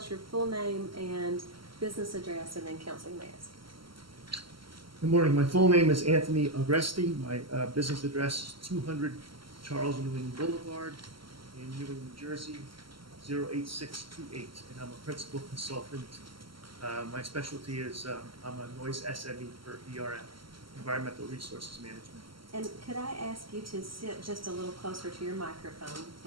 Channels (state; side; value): late; left; 0.74 ms